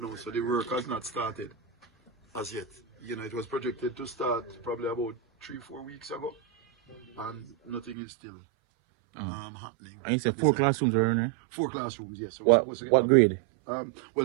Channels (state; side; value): drops out; left; at 8.0 s